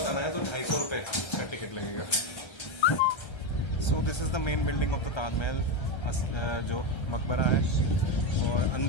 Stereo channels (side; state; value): right; late; 1.3 ms